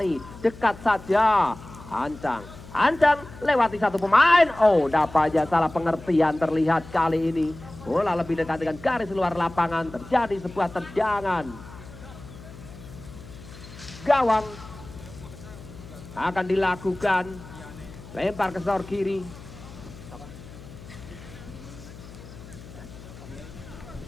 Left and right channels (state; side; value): noise; left; hum, 17 dB below the sound